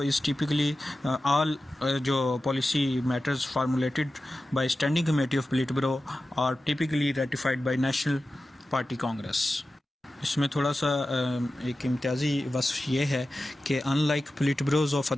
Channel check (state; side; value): normal; both; correlation 0.94